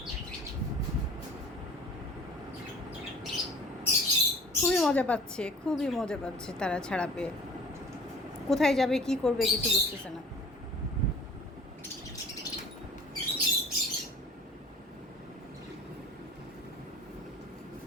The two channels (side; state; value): both; normal; correlation 0.47